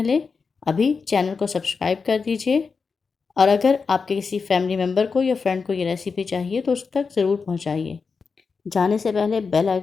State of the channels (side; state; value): right; quieter; 5.1 dB